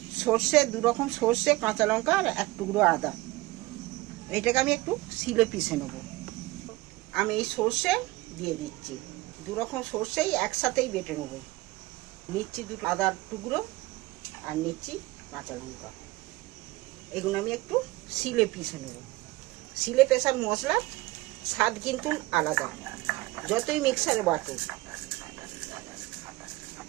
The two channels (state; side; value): quieter; left; 20.4 dB